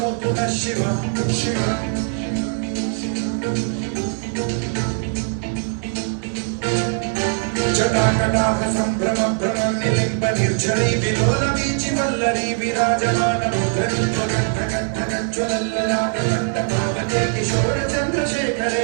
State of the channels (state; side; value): silent; left; 56 dB below the other